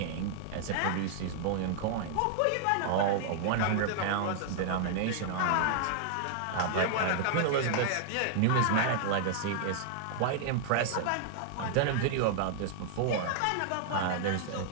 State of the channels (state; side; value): different; both; correlation 0.00